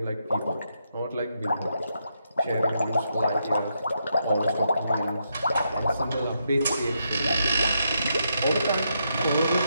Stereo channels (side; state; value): both; inverted; correlation -0.80